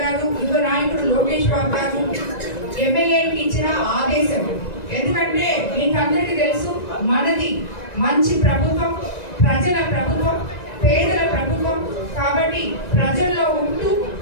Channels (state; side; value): late; right; 1.9 ms